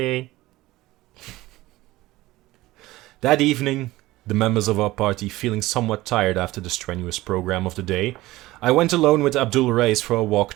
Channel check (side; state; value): left; quieter; 18.0 dB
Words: That evening, the members of our party feeling somewhat tired after the strenuous program of the day, I went alone with Abdul Rais for a walk